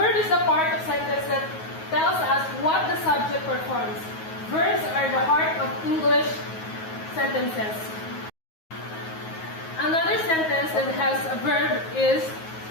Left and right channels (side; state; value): right; late; 9.4 ms